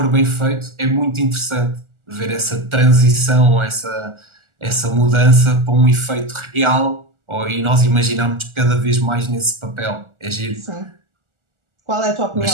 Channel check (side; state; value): left; late; 1.4 ms